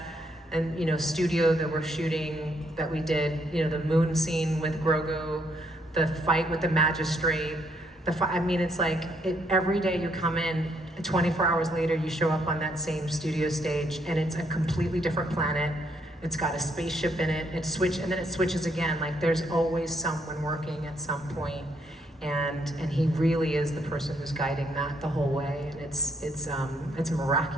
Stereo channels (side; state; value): both; normal; correlation 0.71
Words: and, studio that we're shooting, that we did, the moon scene with Grogu, the fight with the magistrate, it's like, every day you come in, 24 hours later, you show up on that same studio stage, and it's a completely different planet. It's got a spaceship in it. And then it switches again. Like, there's always someone working at some point, and he really is the person who's guiding that the whole way. And it's